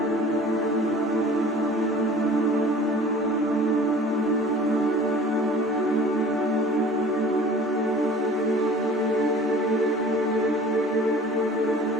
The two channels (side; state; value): both; normal; correlation 0.45